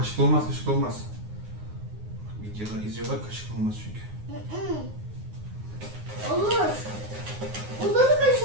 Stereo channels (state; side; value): late; left; 9.6 ms